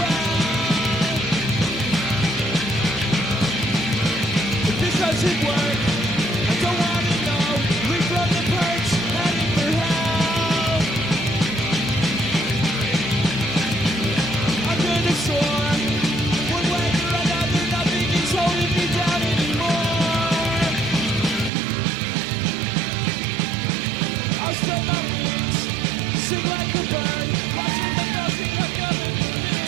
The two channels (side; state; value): left; drops out; at 21.5 s